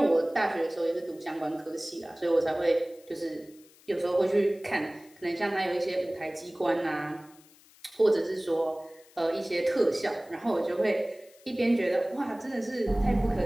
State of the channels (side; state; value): left; noise; hiss, 27 dB below the sound